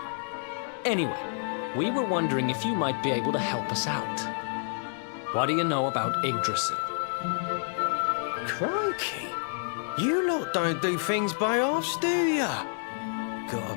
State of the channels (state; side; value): silent; right; 59 dB below the other